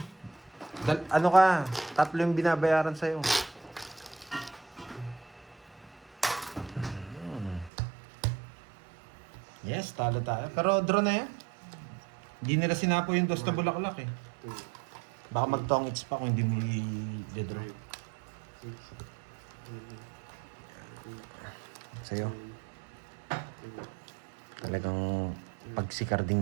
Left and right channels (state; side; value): drops out; left; at 7.7 s